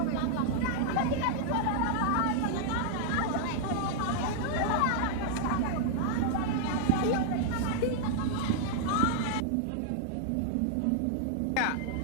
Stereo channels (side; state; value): both; different; correlation -0.01